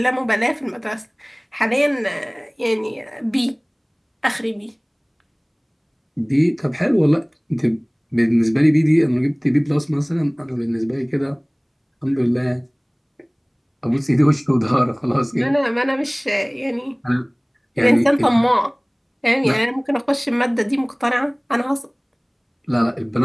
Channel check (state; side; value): identical; both; correlation 1.00